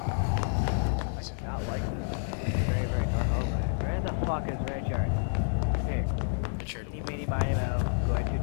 do not like this. Very, very normal. Where the fuck is Richard? Hey, Richard. eeny, meeny, miny, moe. I'm going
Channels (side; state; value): right; silent; digital silence